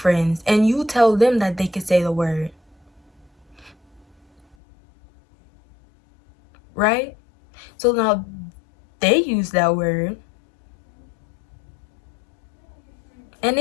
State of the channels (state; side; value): drops out; right; at 4.5 s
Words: and you tell them that they can say the word, right? So now they use that word and